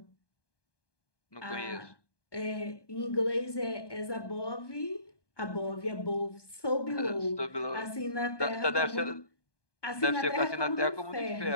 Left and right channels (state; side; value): late; right; 1.2 ms